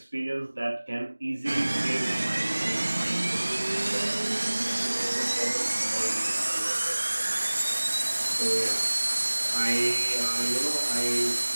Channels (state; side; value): inverted; both; correlation -1.00